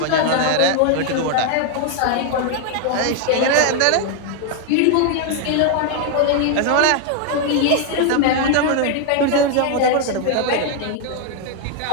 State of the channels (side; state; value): both; different; correlation 0.00